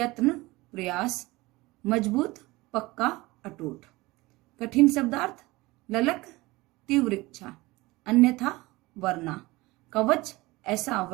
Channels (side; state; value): left; quieter; 21.0 dB